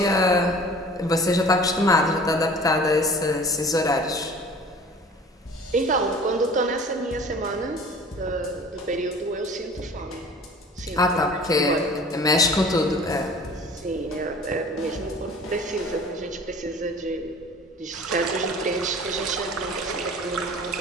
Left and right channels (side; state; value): both; normal; correlation 0.45